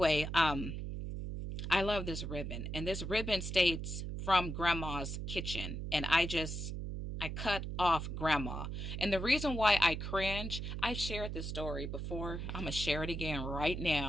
I love this ribbon. And this ribbon states from Grandma's kitchen. And I cut off Grandma. And the reason why I cringe, I've shared this story before. I'm going to share it again right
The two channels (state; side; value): noise; right; hum, 5 dB below the sound